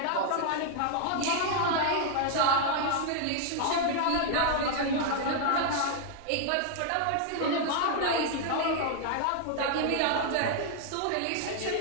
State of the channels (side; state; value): both; different; correlation 0.00